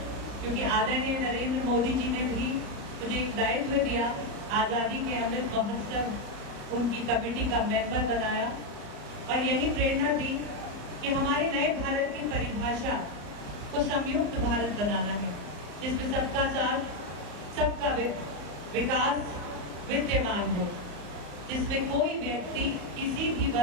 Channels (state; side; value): late; left; 34 ms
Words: क्योंकि आदरणीय नरेंद्र मोदी जी ने भी मुझे एक दायित्व दिया, आज़ादी के अमृत महोत्सव उनकी कमेटी का मेंबर बनाया और यही प्रेरणा दी कि हमारे नए भारत की परिभाषा को संयुक्त भारत बनाना है, जिसमें सबका साथ, सबका विकास विद्यमान हो, जिसमें कोई व्यक्ति, किसी भी